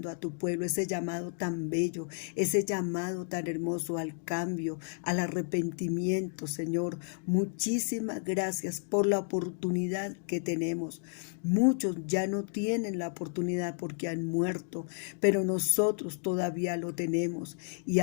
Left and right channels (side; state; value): right; silent; 57 dB below the other